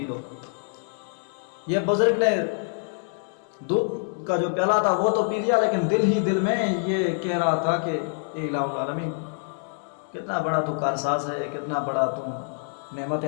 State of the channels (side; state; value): right; silent; digital silence